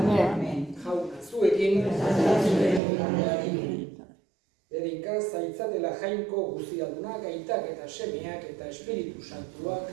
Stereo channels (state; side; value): drops out; left; at 2.8 s